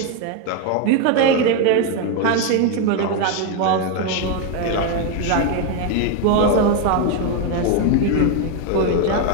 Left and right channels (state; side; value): different; both; correlation 0.02